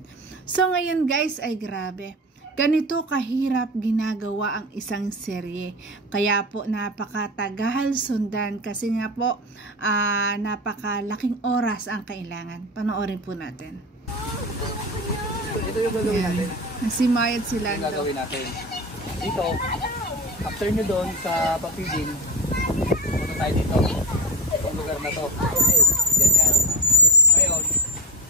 So ngayon guys ay grabe. Ganito kahirap ginagawa ang isang serye. Kaya po napakatagal sundan kasi nga po napakalaking oras ang kailangan. Panoorin po natin. Ito yung gagawin natin. Nagsimayad sila. Ito yung gagawin natin. Dito, after nyo doon sa papiding, punta tayo dito. Itong lugar na to. Ganyan. Ngayon,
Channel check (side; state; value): both; normal; correlation 0.23